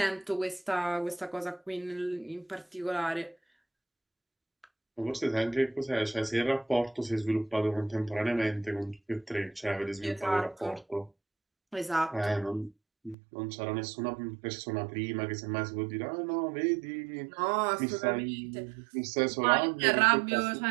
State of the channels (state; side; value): drops out; left; at 13.2 s